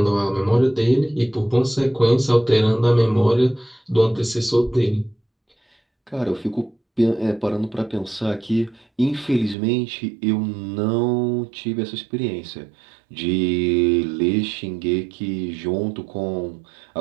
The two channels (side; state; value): left; drops out; at 9.6 s